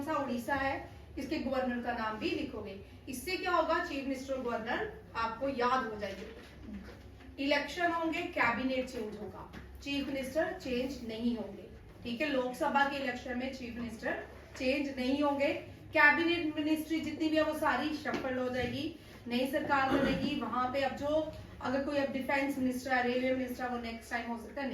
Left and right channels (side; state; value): both; identical; correlation 1.00